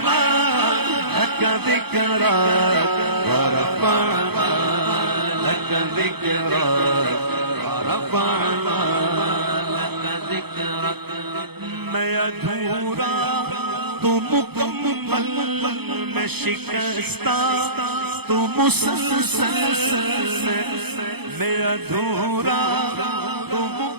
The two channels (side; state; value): left; late; 0.97 ms